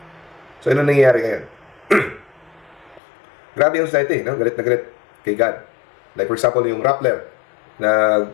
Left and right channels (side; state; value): right; drops out; at 3.0 s